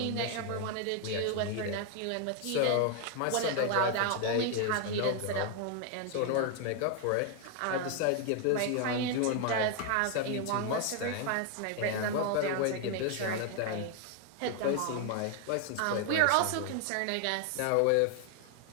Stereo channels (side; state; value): both; different; correlation 0.00